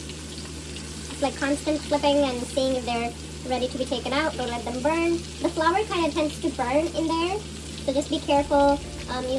It's like constant flipping and seeing if they're ready to be taken out. Don't let them burn. The flour kind of tends to burn in there, so just be careful.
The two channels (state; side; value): identical; both; correlation 1.00